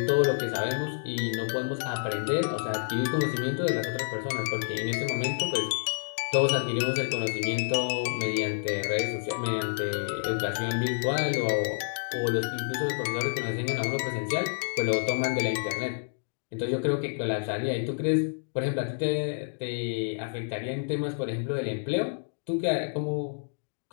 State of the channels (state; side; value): silent; right; digital silence